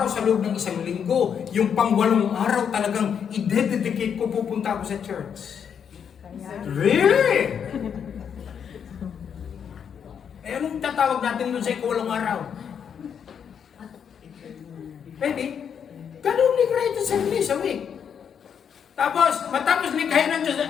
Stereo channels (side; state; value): right; quieter; 7.7 dB